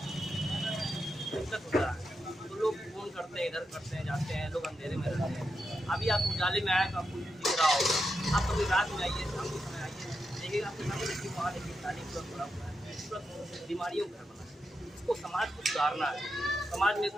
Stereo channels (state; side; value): normal; both; correlation 0.86